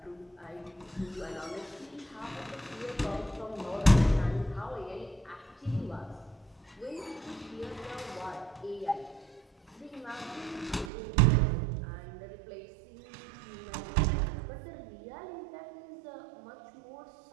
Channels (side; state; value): left; drops out; at 10.9 s